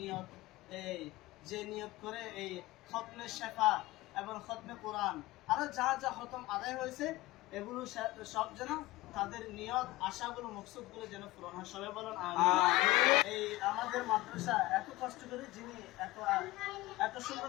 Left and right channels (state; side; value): quieter; right; 19.3 dB